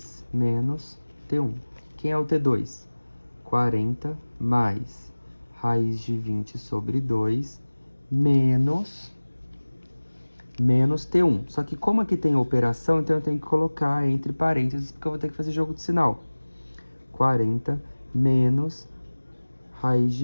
menos T1. Quem é o T2? 40 mais raiz de 20 sobre 2 menos T1. Só que como aqui tem operação, então eu tenho que colocar entre parênteses, porque eu vou ter que fazer jogo de sinal. 40 menos raiz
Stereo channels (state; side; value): inverted; both; correlation -1.00